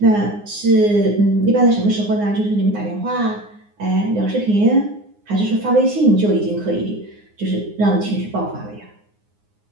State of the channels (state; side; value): late; left; 9.7 ms